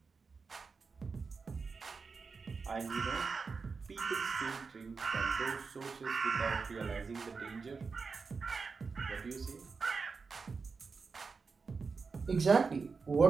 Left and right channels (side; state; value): left; quieter; 4.8 dB